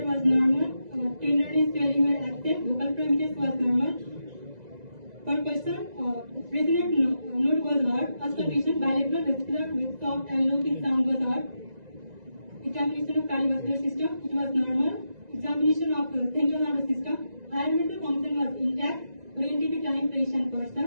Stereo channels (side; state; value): left; late; 2.0 ms